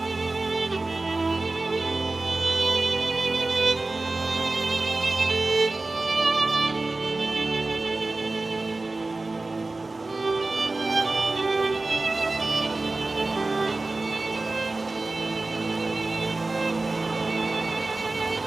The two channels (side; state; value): left; quieter; 3.2 dB